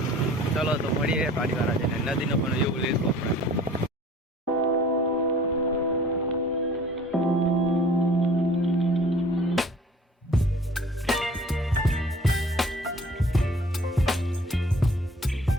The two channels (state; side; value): normal; both; correlation 0.49